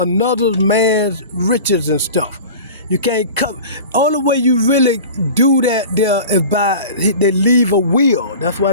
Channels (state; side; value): inverted; both; correlation -0.37